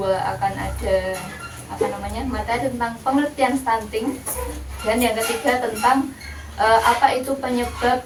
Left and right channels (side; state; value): both; identical; correlation 1.00